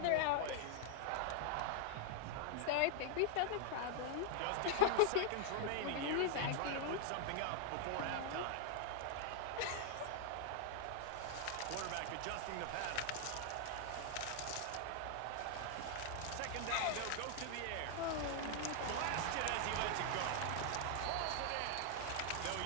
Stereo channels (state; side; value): different; both; correlation 0.00